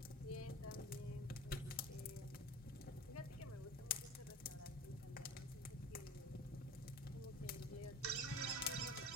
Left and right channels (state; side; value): normal; both; correlation 0.36